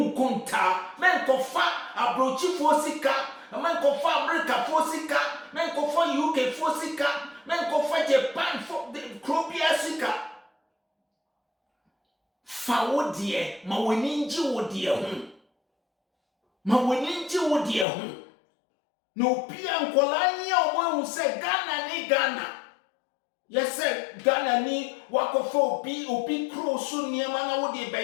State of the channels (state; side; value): drops out; right; at 17.9 s